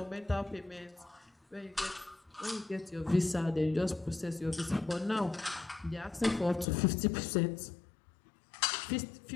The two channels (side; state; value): right; drops out; at 6.7 s